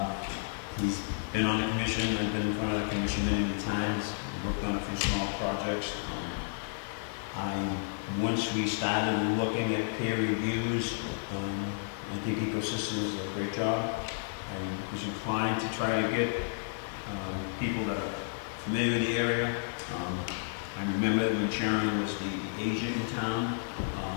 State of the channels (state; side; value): silent; right; digital silence